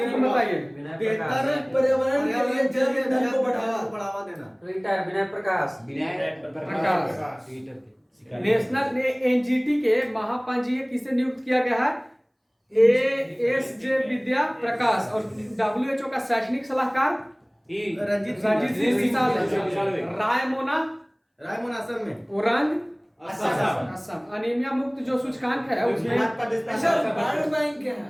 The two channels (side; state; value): both; identical; correlation 1.00